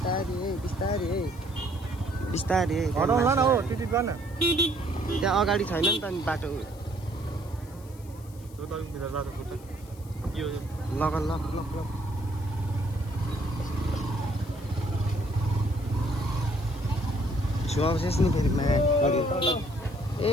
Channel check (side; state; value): left; noise; hiss, 24 dB below the sound